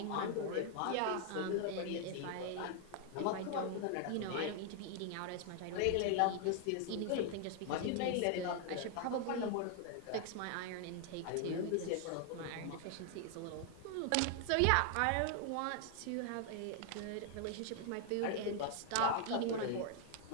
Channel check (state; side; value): different; both; correlation 0.00